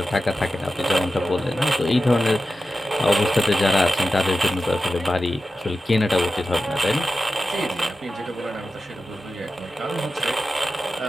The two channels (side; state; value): both; normal; correlation 0.92